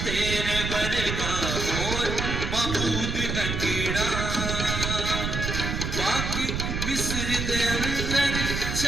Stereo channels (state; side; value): noise; right; rumble, 2 dB below the sound